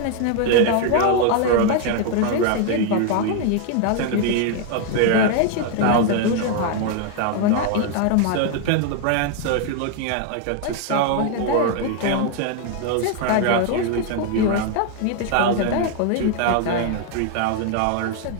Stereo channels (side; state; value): both; different; correlation 0.00